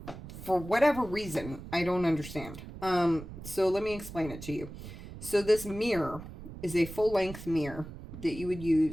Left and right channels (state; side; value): noise; right; rumble, 12 dB below the sound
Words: For whatever reason, I don't understand. So let me explain it to you. So this mirror is a full-length mirror that you would